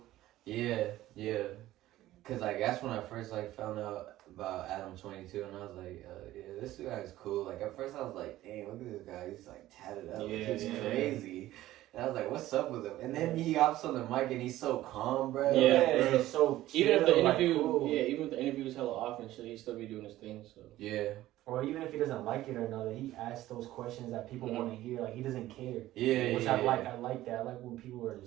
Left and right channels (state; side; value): quieter; left; 15.2 dB